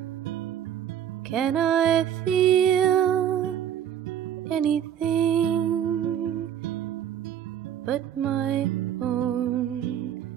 Can I feel anything but my own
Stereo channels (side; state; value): left; quieter; 9.8 dB